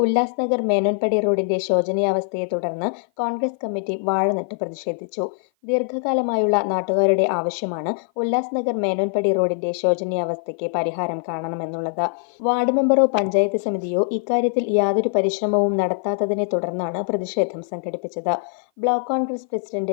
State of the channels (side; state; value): right; silent; 55 dB below the other